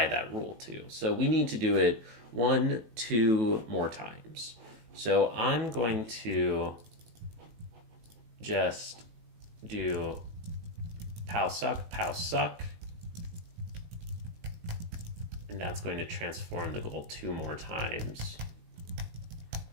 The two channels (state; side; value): late; left; 18 ms